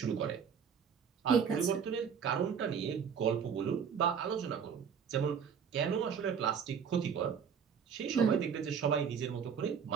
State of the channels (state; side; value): quieter; left; 7.1 dB